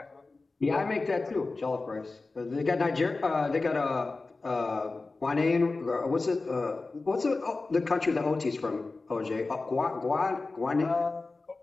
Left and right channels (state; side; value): quieter; right; 3.6 dB